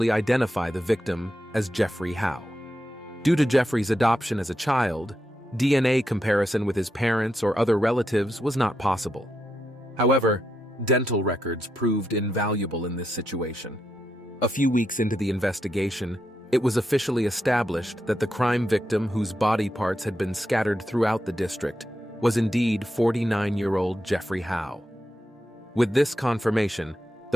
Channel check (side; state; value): both; normal; correlation 0.84